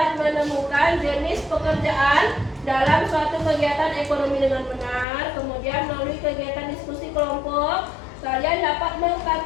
menemukan jenis pekerjaan dalam suatu kegiatan ekonomi dengan benar. Kemudian melalui kegiatan diskusi kelompok, kalian dapat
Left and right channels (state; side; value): drops out; right; at 5.1 s